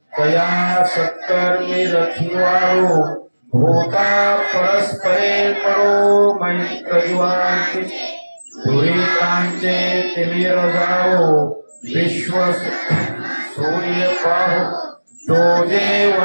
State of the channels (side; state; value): both; inverted; correlation -1.00